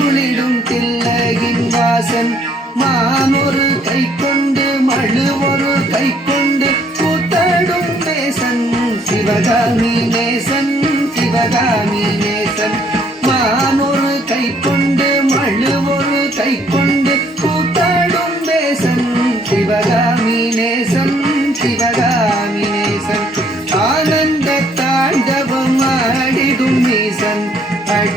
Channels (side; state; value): both; normal; correlation 0.65